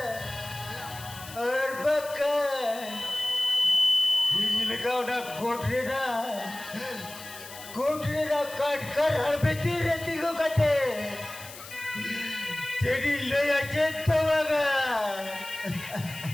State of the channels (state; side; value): noise; left; hiss, 15 dB below the sound